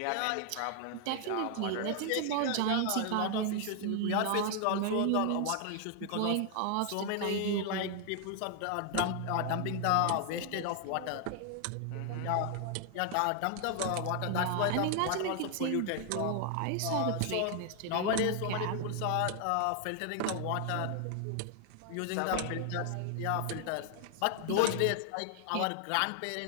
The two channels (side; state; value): both; different; correlation 0.00